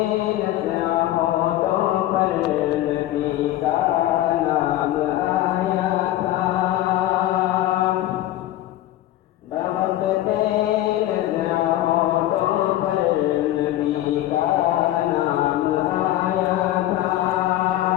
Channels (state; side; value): quieter; right; 14.2 dB